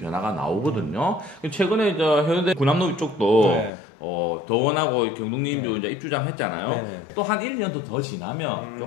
나오거든요. 최근에 저 해운대 군함로 쪽도 네. 더원하고 경동님도 이제 입주장 했잖아요. 네. 또 한 1년 더 지나면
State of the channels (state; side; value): drops out; right; at 3.7 s